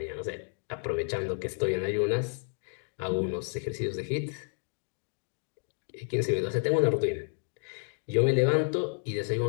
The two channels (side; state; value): right; silent; 56 dB below the other